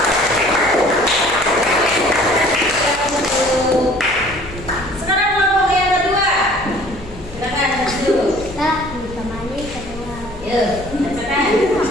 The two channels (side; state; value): left; noise; hum, 17 dB below the sound